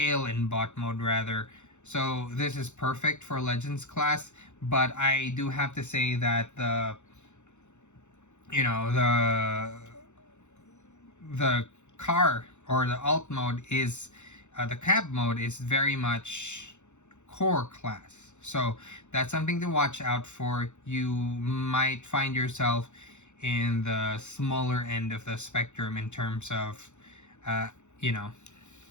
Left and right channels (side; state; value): right; late; 0.83 ms